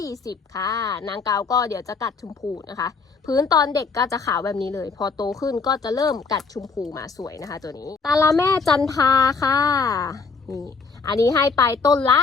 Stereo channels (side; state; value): right; quieter; 4.8 dB